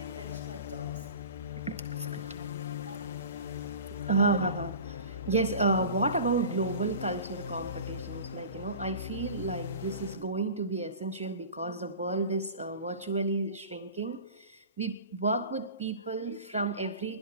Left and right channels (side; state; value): both; inverted; correlation -0.37